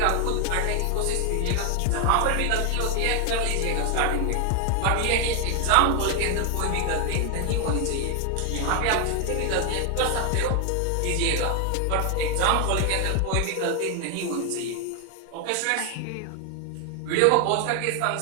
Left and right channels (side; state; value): both; different; correlation 0.00